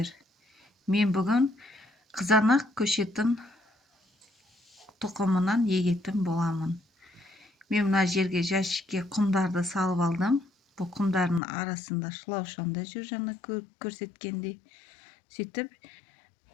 Мен бүгін қызанақ көшетін тұқымынан егетін боламын. Мен мына жерге жәшікке құмдарды салып алдым. Бұл құмдардың арасында шылаушанда жүр, жаңа көрсеткендей. Сөйтіп,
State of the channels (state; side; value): drops out; right; at 11.4 s